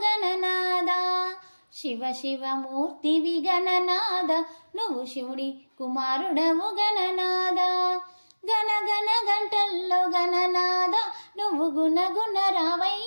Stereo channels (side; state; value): both; inverted; correlation -1.00